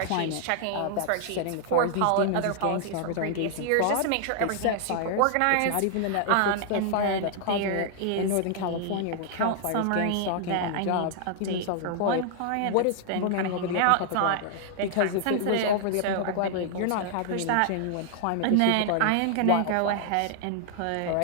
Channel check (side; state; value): both; different; correlation -0.01